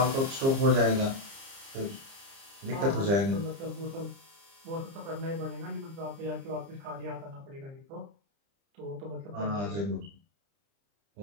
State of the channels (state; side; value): late; left; 30 ms